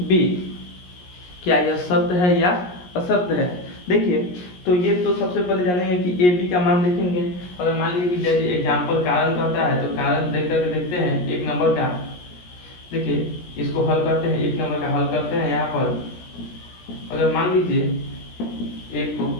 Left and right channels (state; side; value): late; right; 17 ms